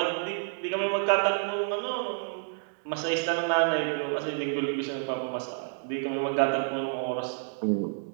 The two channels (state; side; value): silent; left; digital silence